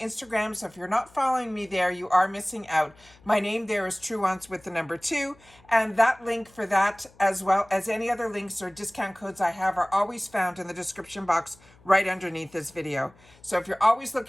So if you're not following me there, you are missing out. My name there is Truewants with the number 2. And that link for that, as well as any other links or discount codes I have, are always found in the description box right underneath this video. So if you're always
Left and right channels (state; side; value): noise; left; hum, 28 dB below the sound